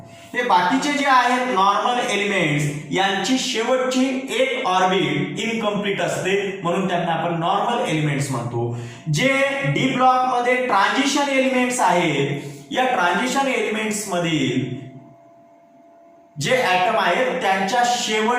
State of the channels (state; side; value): identical; both; correlation 1.00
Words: हे बाकीचे जे आहेत नॉर्मल एलिमेंट्स यांची शेवटची एक ऑर्बिट इनकम्प्लीट असते, म्हणून त्यांना आपण नॉर्मल एलिमेंट्स म्हणतो. जे डी ब्लॉक मध्ये ट्रान्झिशन एलिमेंट्स आहेत, या ट्रान्झिशन एलिमेंट्स मधील जे ऍटम आहेत त्यांच्या